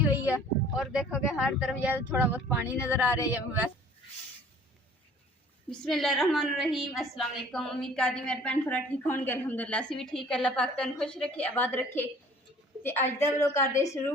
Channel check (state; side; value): normal; both; correlation 0.51